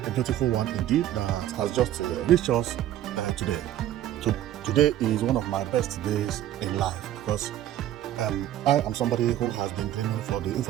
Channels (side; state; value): left; quieter; 12.5 dB